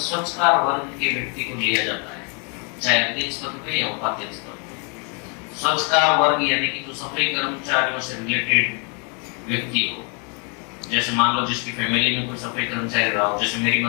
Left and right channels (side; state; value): right; quieter; 36.5 dB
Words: वर्ग के व्यक्ति को लिया जाता है, चाहे अध्यक्ष पद पे या उपाध्यक्ष पद पे। स्वच्छकार वर्ग यानी कि जो सफाई कर्मचारियों से रिलेटेड व्यक्ति हो, जैसे मान लो जिसकी फैमिली में कोई सफाई कर्मचारी रहा हो, जैसे मेरी